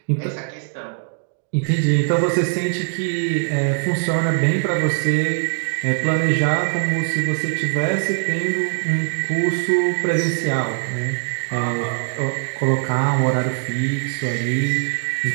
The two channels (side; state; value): left; silent; digital silence